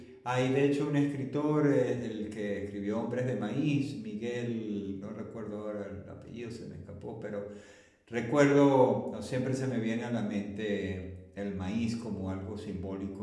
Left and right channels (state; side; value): identical; both; correlation 1.00